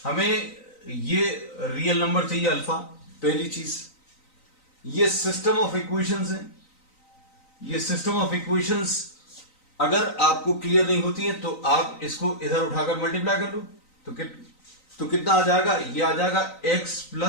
हमें ये रियल नंबर चाहिए अल्फा, पहली चीज। ये सिस्टम ऑफ इक्वेशंस है, ये सिस्टम ऑफ इक्वेशंस अगर आपको क्लियर नहीं होती है तो आप इसको इधर उठाकर मल्टीप्लाई कर लो, तो कितना आ जाएगा, ये आ जाएगा x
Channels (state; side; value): late; right; 3.9 ms